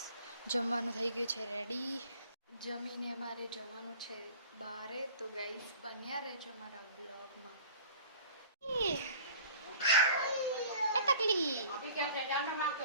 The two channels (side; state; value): both; inverted; correlation -0.46